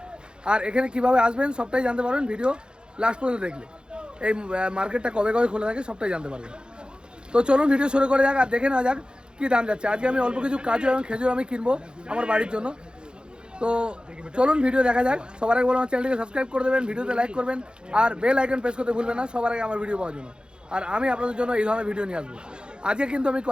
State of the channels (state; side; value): late; left; 0.049 ms